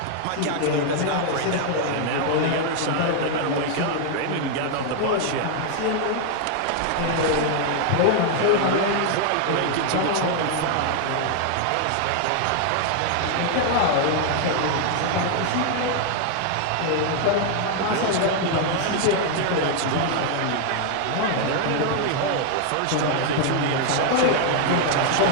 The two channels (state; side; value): different; both; correlation 0.00